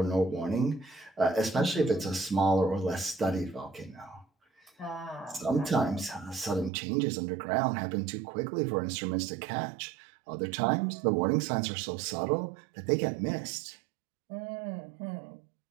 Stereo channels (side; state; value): left; drops out; at 6.7 s